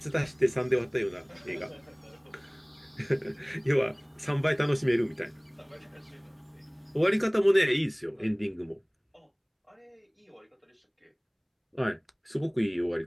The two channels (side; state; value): both; identical; correlation 1.00